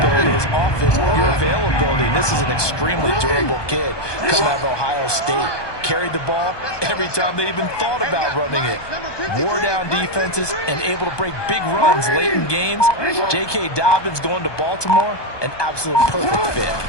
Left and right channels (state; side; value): late; right; 1.2 ms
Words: is often your availability. And this is an extremely durable kid coming out of Ohio State. Carried the ball every time they even thought about running it. Wore down defenses and able to break big runs late in games. J.K. Dobbins going to Baltimore, an absolute perfect fit.